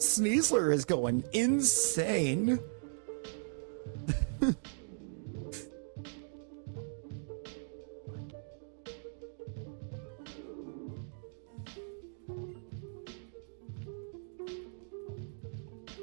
is going insane.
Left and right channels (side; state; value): left; silent; digital silence